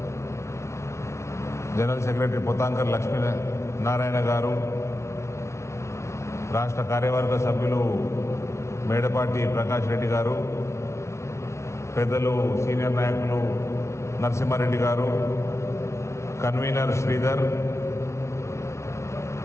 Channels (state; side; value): late; right; 0.13 ms